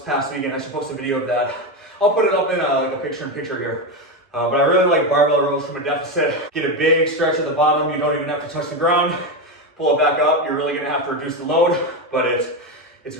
past weekend. I should post a video of that. I'll put it up in like a picture-in-picture here. But I really like barbell rows from a deficit. Get a big stretch at the bottom. You don't even have to touch the ground. Pull it back up. You're really gonna have to reduce the load, but it's a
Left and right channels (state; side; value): normal; both; correlation 0.13